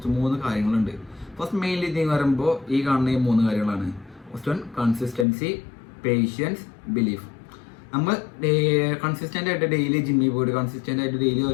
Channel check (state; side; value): drops out; right; at 5.2 s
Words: 3 കാര്യങ്ങളുണ്ട്. ഫസ്റ്റ് മെയിൻലി ഇതിന് പറയുമ്പോൾ ഈ കാണുന്ന ഈ 3 കാര്യങ്ങളാണ്. First one consistency, patience, belief. നമ്മൾ കൺസിസ്റ്റൻ്റ് ആയിട്ട് ഡെയിലി ജിമ്മിൽ പോയിട്ട് കൺസിസ്റ്റൻ്റ് ആയിട്ട് ഡെയിലി